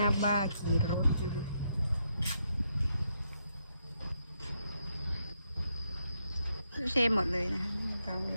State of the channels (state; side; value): inverted; both; correlation -0.79